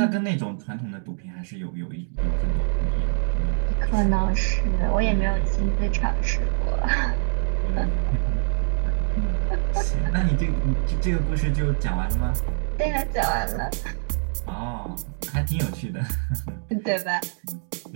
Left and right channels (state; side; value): silent; left; digital silence